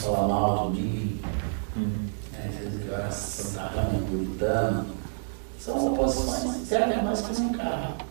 mal de mim, dizendo que eu era santarrão, puritano. São oposições, servem mais que um carro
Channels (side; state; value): left; silent; digital silence